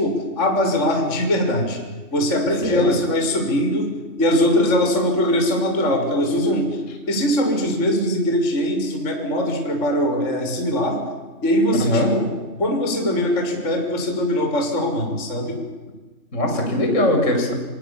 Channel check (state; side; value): late; right; 3.5 ms